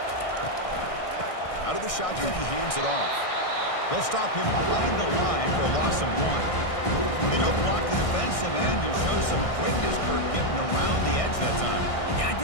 Out of the shotgun, he hands it off. They'll stop him behind the line for a loss of 1. They don't block the defensive end and show some quickness, Kirk, getting around the edge that time. Yeah,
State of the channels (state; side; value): late; right; 1.6 ms